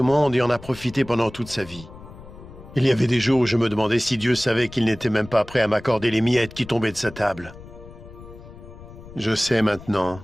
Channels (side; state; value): left; noise; rumble, 17 dB below the sound